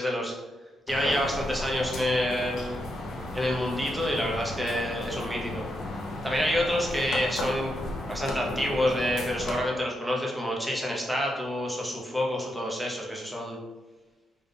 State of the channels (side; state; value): both; normal; correlation 0.83